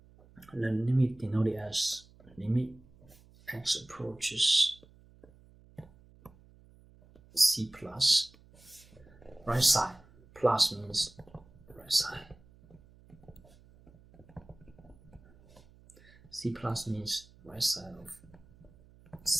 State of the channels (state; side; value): noise; right; hum, 26 dB below the sound